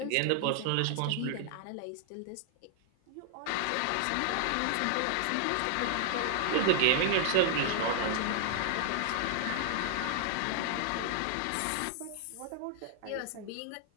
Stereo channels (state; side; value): different; both; correlation 0.00